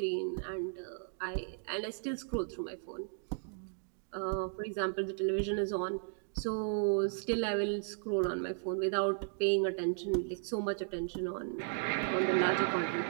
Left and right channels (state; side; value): silent; left; digital silence